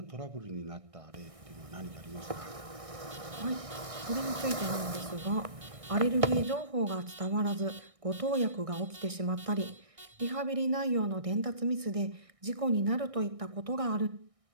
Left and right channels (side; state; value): left; late; 1.6 ms